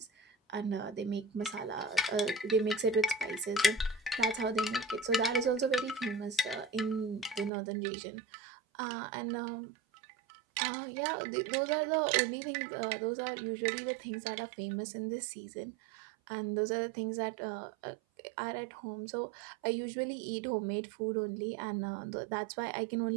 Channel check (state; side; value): drops out; left; at 7.5 s